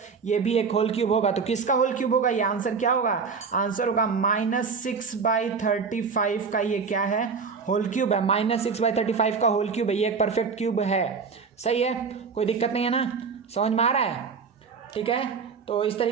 ये भी एक होल क्यूब होगा। तो किसका होल क्यूब होगा, ये आंसर क्या होगा, आंसर होगा -6/35 का, ये क्या है, होल क्यूब है, -6/35 का होल क्यूब है, ये एक परफेक्ट क्यूब है, सही है, कोई दिक्कत नहीं है ना, समझ में आ रहा है, ठीक है। तो इस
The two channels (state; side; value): quieter; left; 5.4 dB